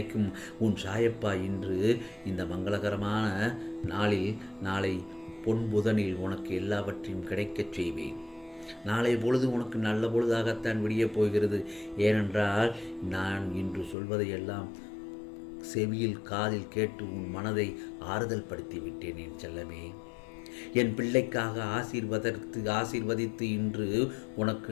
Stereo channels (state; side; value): drops out; right; at 14.0 s